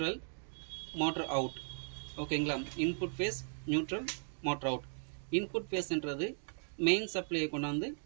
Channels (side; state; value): left; silent; 53 dB below the other